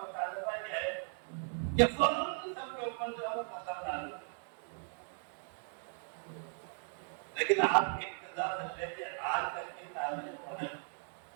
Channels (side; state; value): left; silent; 53 dB below the other